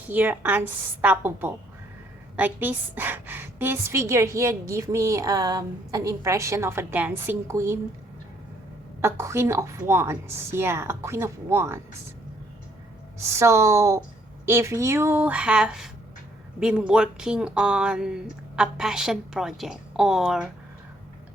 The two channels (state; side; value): normal; both; correlation 0.67